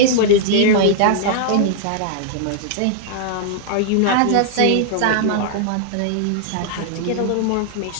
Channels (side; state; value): both; different; correlation -0.01